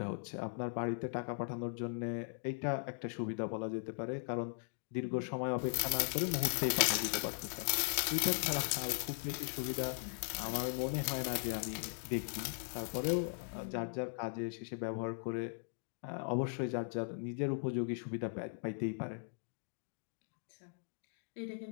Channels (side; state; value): right; silent; digital silence